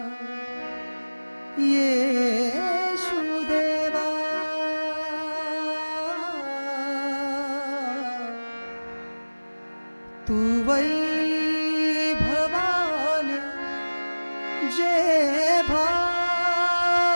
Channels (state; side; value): inverted; both; correlation -1.00